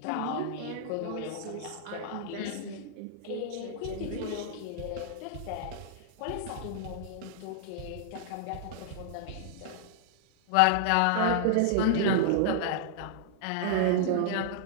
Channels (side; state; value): both; different; correlation -0.01